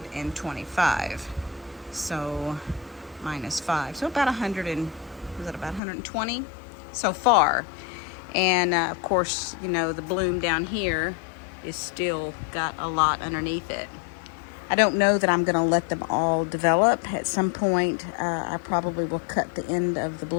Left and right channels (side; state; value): right; drops out; at 5.8 s